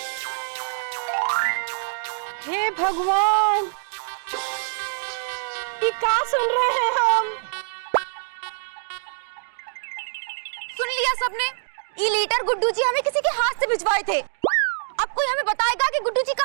हे भगवान, ये क्या सुन रहे हैं हम? सुन लिया सबने? ये लेटर गुड्डू जी हमें किसी के हाथ से भिजवाए थे। अब कोई हमें बताएगा कि गुड्डू जी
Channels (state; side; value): silent; left; digital silence